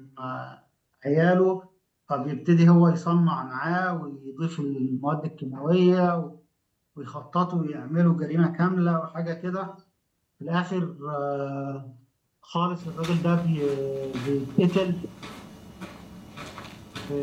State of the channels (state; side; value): identical; both; correlation 1.00